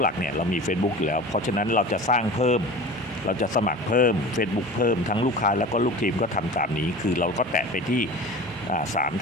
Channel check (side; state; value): both; normal; correlation 0.36